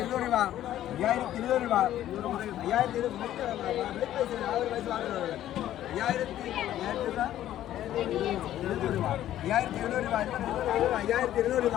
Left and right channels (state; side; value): quieter; right; 12.6 dB